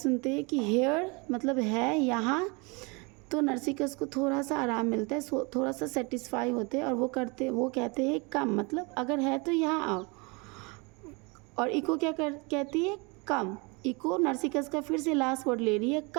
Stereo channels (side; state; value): left; quieter; 29.4 dB